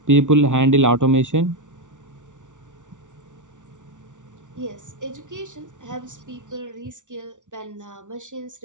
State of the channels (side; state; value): left; late; 0.86 ms